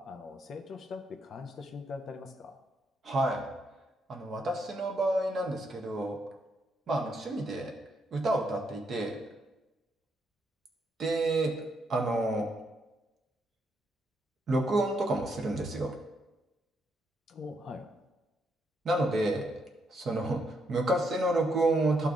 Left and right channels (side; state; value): both; normal; correlation 0.77